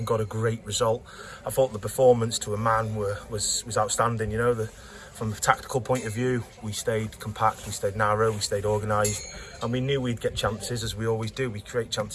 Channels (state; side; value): identical; both; correlation 1.00